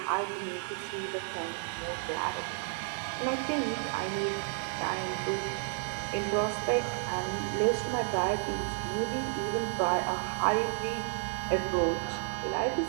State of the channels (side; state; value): left; silent; 57 dB below the other